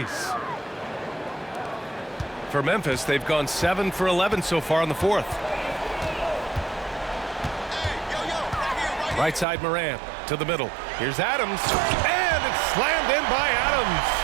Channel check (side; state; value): left; drops out; at 9.5 s